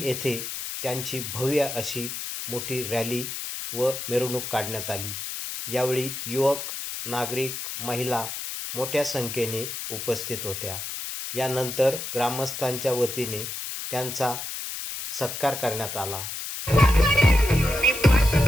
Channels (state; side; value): noise; left; hiss, 6 dB below the sound